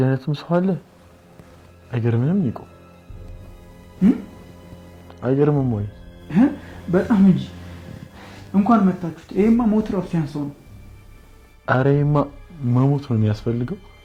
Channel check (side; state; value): both; identical; correlation 1.00